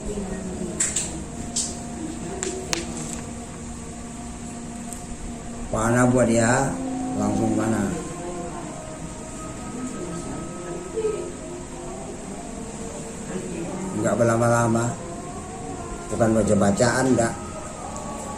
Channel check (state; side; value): identical; both; correlation 1.00